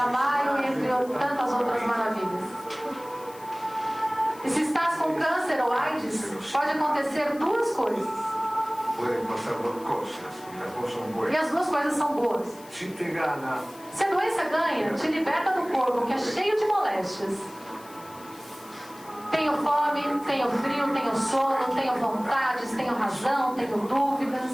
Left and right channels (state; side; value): noise; left; hiss, 21 dB below the sound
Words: entre tantas outras maravilhas. E se estás com câncer ou AIDS, pode acontecer 2 coisas. E as 2 coisas são boas. Se a doença ganha, te liberta do corpo, que é cheio de moléstias. Tenho fome, tenho frio, tenho sono, tenho vontades, tenho razão, tenho dúvidas.